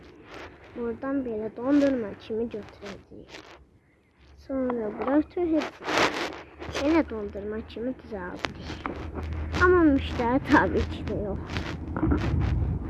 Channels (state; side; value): identical; both; correlation 1.00